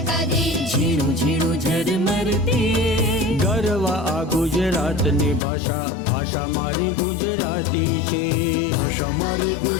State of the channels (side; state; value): right; drops out; at 5.4 s